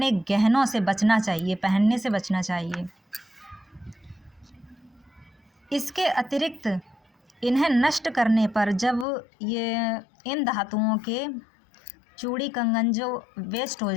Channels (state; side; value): drops out; right; at 9.1 s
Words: गहनों से बचना चाहिए, पहनने से बचना चाहिए। इसके अतिरिक्त इन्हें नष्ट करने पर, जब इन धातुओं के चूड़ी कंगन जो वेस्ट हो